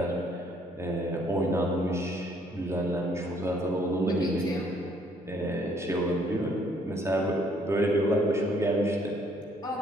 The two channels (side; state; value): both; normal; correlation 0.65